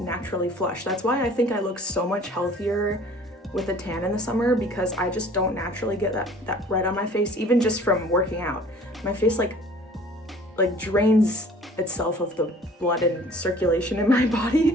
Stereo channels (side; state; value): both; normal; correlation 0.50